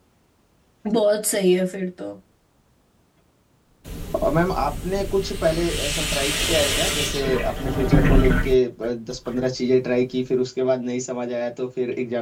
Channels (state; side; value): identical; both; correlation 1.00